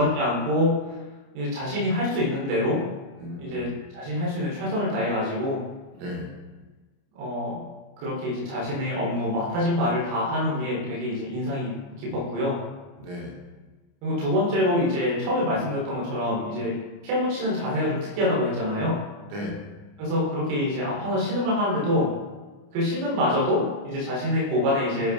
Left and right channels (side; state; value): left; late; 29 ms